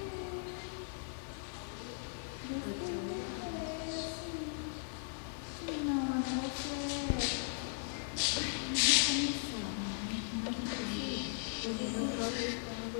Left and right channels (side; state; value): right; silent; digital silence